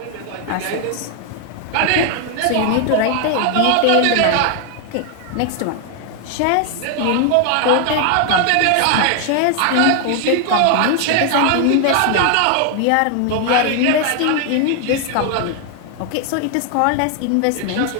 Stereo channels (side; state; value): both; different; correlation 0.00